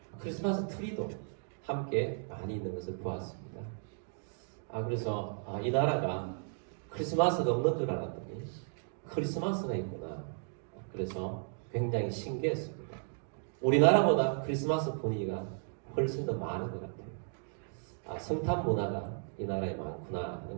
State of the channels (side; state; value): left; silent; 54 dB below the other